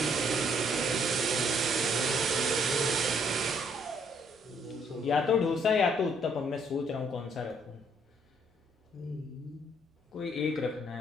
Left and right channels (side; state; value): both; normal; correlation 0.67